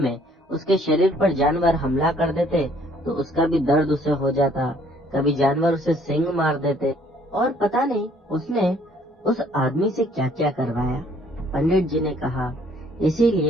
उसके शरीर पर जानवर हमला कर देते तो उसका भी दर्द उसे हो जाता, कभी जानवर उसे सींग मार देते, और पता नहीं उसने उस आदमी से क्या क्या करवाया। पंडित जी ने कहा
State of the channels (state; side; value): normal; both; correlation 0.61